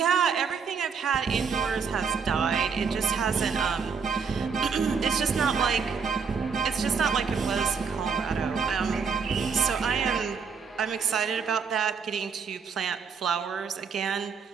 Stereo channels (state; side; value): quieter; left; 5.8 dB